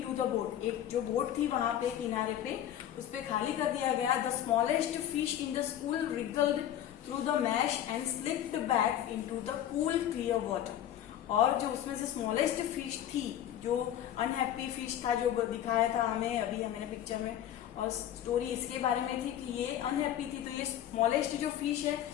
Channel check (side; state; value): right; quieter; 11.2 dB